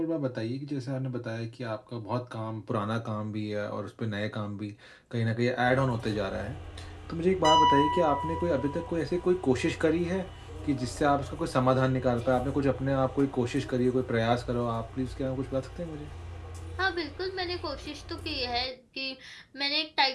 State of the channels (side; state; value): both; identical; correlation 1.00